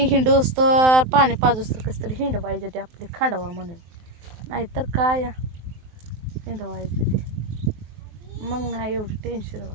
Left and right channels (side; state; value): left; late; 23 ms